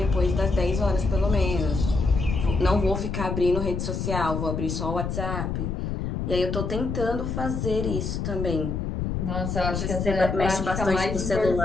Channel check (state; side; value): noise; left; rumble, 3 dB below the sound